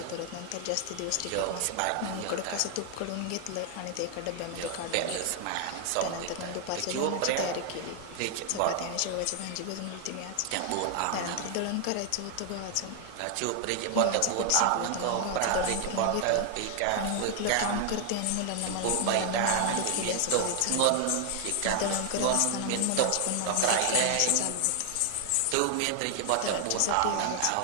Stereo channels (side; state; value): both; different; correlation 0.00